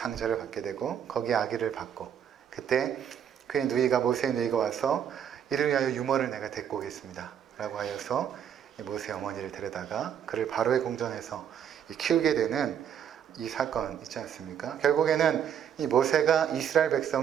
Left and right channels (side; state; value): left; quieter; 8.9 dB